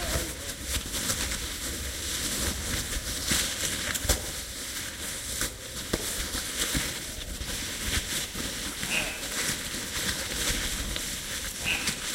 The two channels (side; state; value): both; identical; correlation 1.00